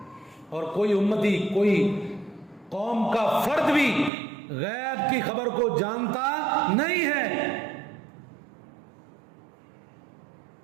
اور کوئی امتی، کوئی قوم کا فرد بھی غیب کی خبر کو جانتا نہیں ہے.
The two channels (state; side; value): drops out; left; at 4.1 s